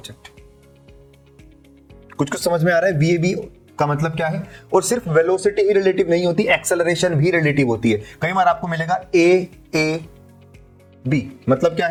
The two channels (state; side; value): identical; both; correlation 1.00